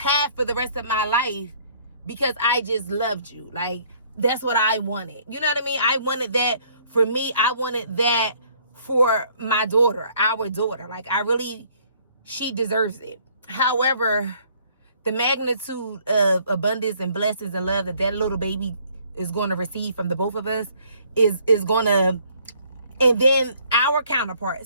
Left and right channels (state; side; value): inverted; both; correlation -0.61